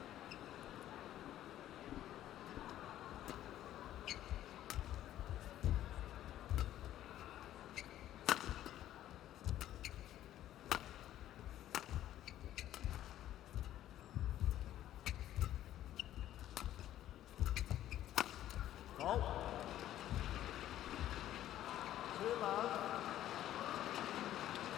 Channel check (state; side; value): quieter; right; 12.7 dB